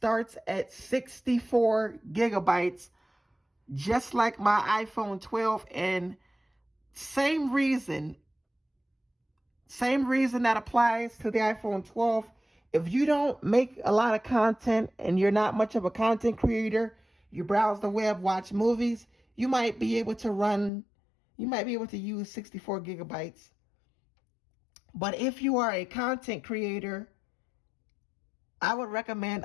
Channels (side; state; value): right; drops out; at 20.7 s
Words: at 64 gigabytes, just like my iPhone 12, and same reason that applies to the iPhone 12. If you don't make a lot of content and you're not much of a content creator, you browse the web, watch movies, you might be able to use 64 gigabytes. But if you are a content creator, I would recommend